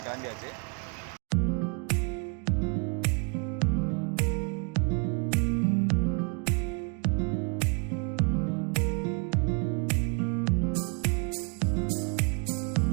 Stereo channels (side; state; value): left; quieter; 34.2 dB